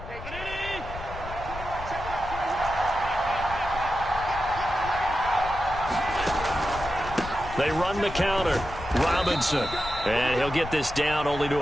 They run the counter. Robinson. And he'll get this down only to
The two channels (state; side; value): noise; left; rumble, 11 dB below the sound